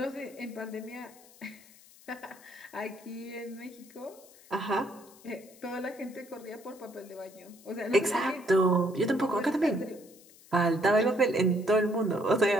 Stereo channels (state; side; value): noise; left; hiss, 24 dB below the sound